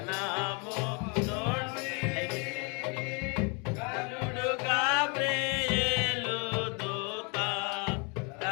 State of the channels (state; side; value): quieter; right; 33.4 dB